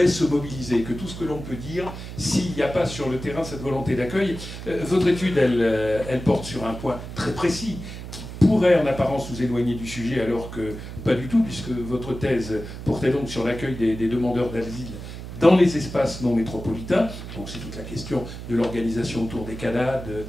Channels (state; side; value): noise; right; hum, 10 dB below the sound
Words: se mobiliser, que tout ce que l'on peut dire, s'il n'y a pas sur le terrain cette volonté d'accueil. Votre étude, elle porte sur un point très précis, pourrait en apparence nous éloigner du sujet, alors que pas du tout, puisque votre thèse portait donc sur l'accueil des demandeurs d'asile dans les espaces non métropolitains. Donc c'est toute la question de l'organisation autour des CADA,